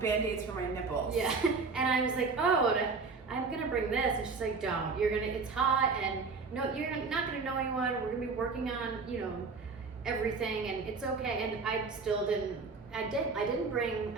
Band-Aids for my nipples. Yeah. And I was like, oh, I'm gonna bring this. And she's like, don't. It's hot and no, you're not gonna know anyone. We're gonna be working on, everything, and it's okay. And I still didn't. I didn't bring.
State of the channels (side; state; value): left; quieter; 4.5 dB